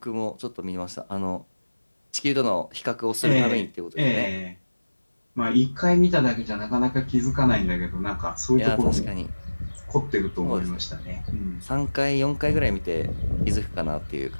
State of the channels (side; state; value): both; inverted; correlation -1.00